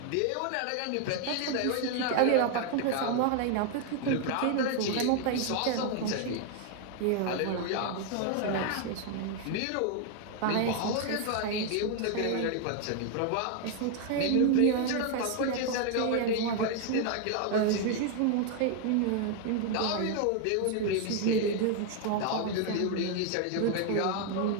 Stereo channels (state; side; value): different; both; correlation 0.01